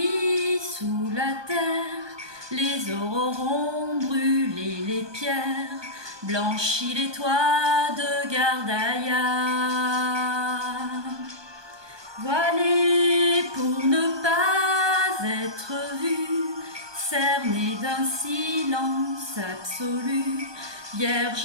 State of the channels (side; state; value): left; late; 1.2 ms